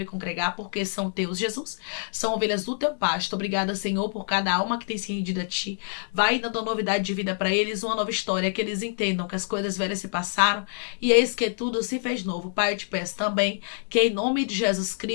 congregar, porque são teus, Jesus. São ovelhas do teu pasto. Obrigada, Senhor, por cada alma que tem se rendido a ti. Vai dando novidade de vida para eles, uma nova história, que eles entendam que as coisas velhas se passaram e eis que tudo se fez novo. Pai, eu te peço também que em nome de Jesus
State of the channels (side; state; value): right; silent; digital silence